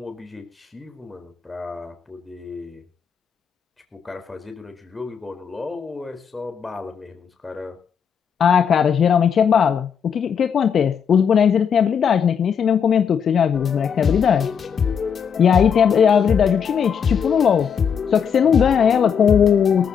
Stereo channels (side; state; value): right; quieter; 7.3 dB